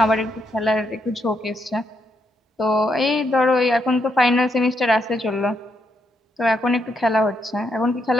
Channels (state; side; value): normal; both; correlation 0.79